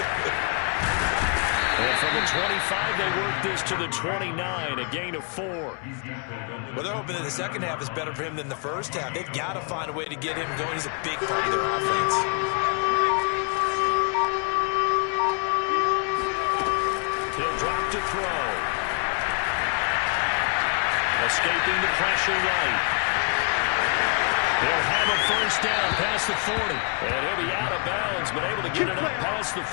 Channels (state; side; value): quieter; right; 40.0 dB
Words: And from the 25, they work this to the 29, a gain of 4. Well, they're hoping that the second half is better for him than the first half. They've got to find a way to get him going. He's a big part of their offense. He'll drop to throw. Escaping the pressure right. He'll have a first down past the 40. And he'll be out of bounds, but able to get it up past the